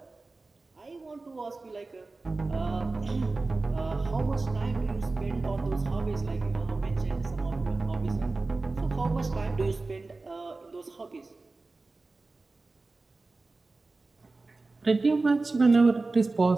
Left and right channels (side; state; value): left; quieter; 3.5 dB